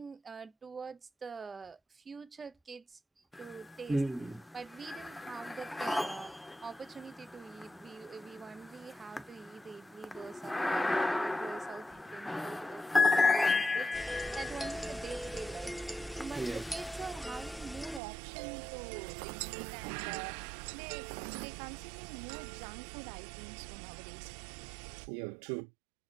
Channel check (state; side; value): drops out; left; at 18.0 s